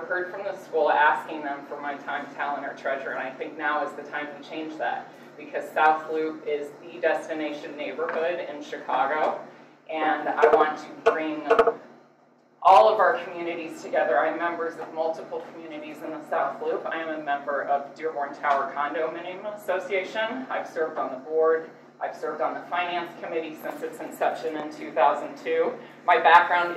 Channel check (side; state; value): both; identical; correlation 1.00